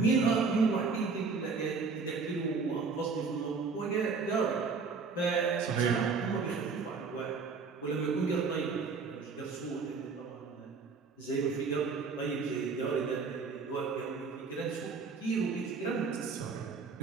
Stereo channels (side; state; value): left; quieter; 4.8 dB